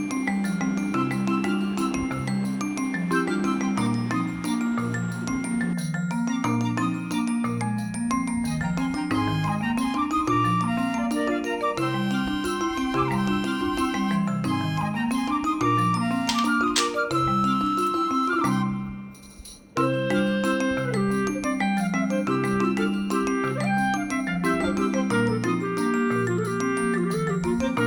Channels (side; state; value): both; identical; correlation 1.00